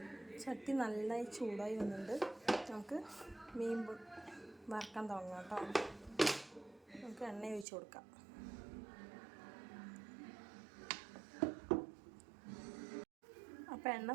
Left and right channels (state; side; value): drops out; left; at 7.7 s